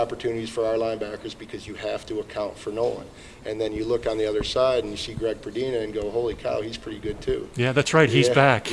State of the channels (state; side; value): identical; both; correlation 1.00